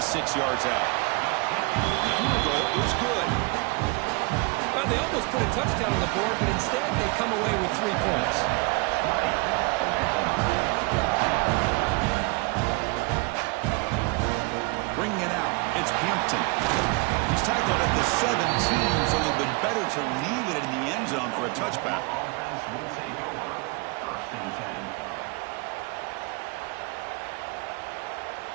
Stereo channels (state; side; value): quieter; left; 28.1 dB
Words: yards out. The field goal is good. Well, they almost put a touchdown on the board, but instead they come away with 3 points. Bringing it out, it's Hampton. He's tackled at the 17, so a little bit better to leave it in the end zone for a touchback.